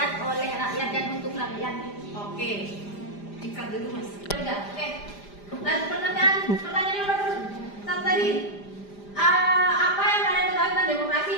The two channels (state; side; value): late; right; 5.0 ms